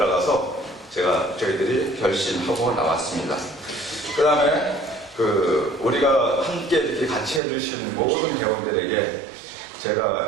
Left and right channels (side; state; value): left; drops out; at 7.4 s